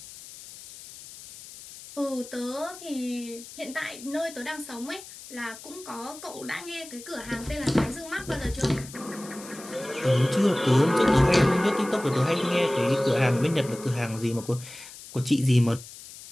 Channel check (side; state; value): left; noise; hiss, 16 dB below the sound